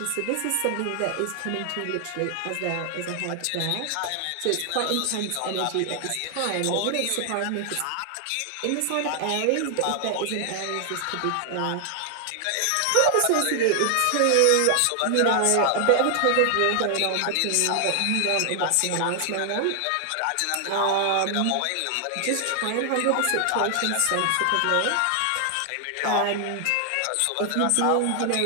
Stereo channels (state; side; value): different; both; correlation 0.00